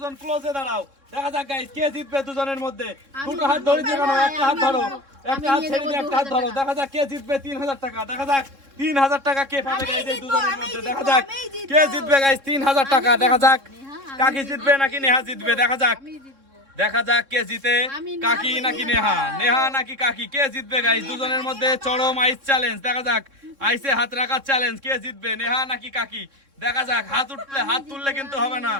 ক্লোজে দাঁড়াও। দেখা যাক গাইজ কে জিতবে দুজনের মধ্যে। দুটো হাত ধরে দিয়ে কেন, একটা হাত ধরো, একটা হাত ছেড়ে দিয়ে একটা হাত ধরো। দেখা যাক কে জিতবে 3000 টাকা। দেখা যাক 3000 টাকা কে পাবে গাইজ এই দুজনের মধ্যে। দেখা যাক কে জিতবে গাইজ 3000 টাকা। দেখা যাক কাকি জিতবে নাকি নেহা জিতবে। দেখা যাক, দেখা যাক কে জিতে, কাকি নাকি নেহা, নেহা নাকি কাকি, কে জিতবে গাইজ দুজনের মধ্যে। চরম আইস চ্যালেঞ্জ। দেখা যাক আইসে হাত রাখার চ্যালেঞ্জ, কে জিতবে নেহা নাকি কাকি। দেখা যাক হাত উঠলে, হাত তুললে কিন্তু হবে না,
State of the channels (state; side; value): late; left; 3.6 ms